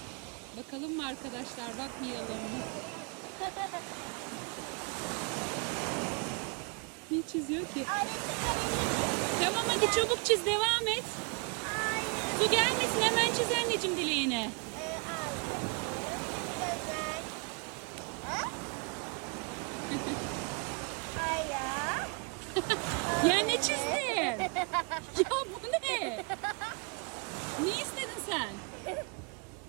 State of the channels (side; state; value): left; quieter; 34.4 dB